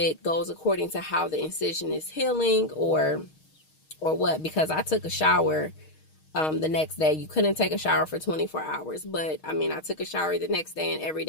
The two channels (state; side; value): late; right; 6.4 ms